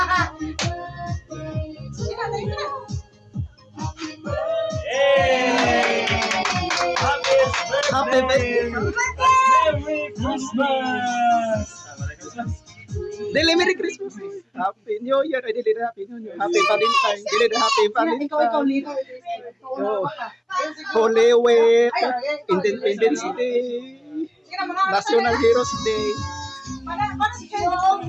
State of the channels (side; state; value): both; identical; correlation 1.00